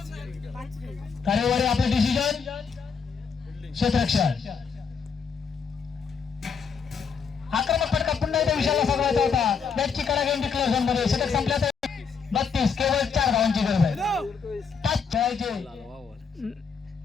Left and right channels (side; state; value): right; quieter; 5.9 dB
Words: तारेवाडी आपलं डिसिजन क्षेत्ररक्षण. आक्रमक फटका पुन्हा एकदा विषयाला साधवायचा होता. बॅटची कडा घेऊन डिक्लेअर झोन मध्ये. षटक संपल्या तर 32. केवळ 4 धावांची गरज आहे. 5 खेळायचे.